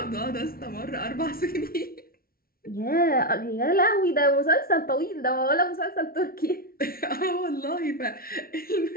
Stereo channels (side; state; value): right; late; 0.43 ms